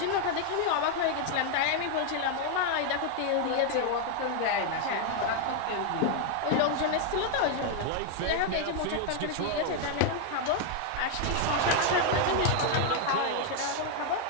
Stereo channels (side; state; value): both; different; correlation 0.00